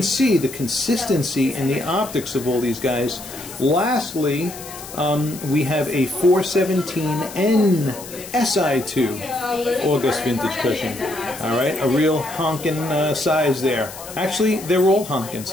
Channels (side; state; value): left; noise; hiss, 14 dB below the sound